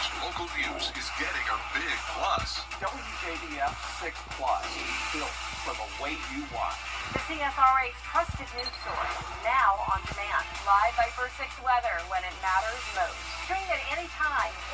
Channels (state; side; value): identical; both; correlation 1.00